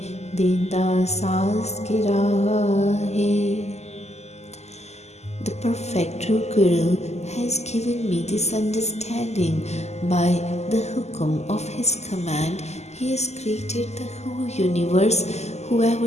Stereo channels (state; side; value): late; right; 0.32 ms